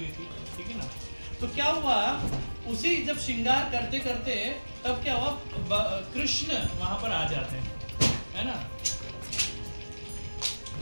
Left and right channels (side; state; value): both; inverted; correlation -1.00